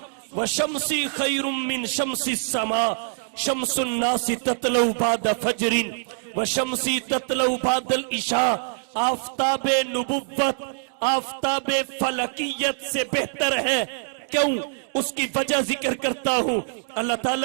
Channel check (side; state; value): left; silent; digital silence